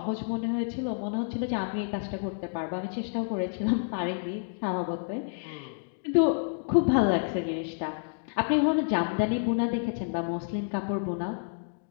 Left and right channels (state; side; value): silent; right; digital silence